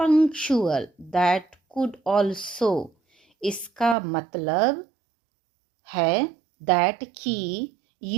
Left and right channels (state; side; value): drops out; left; at 4.0 s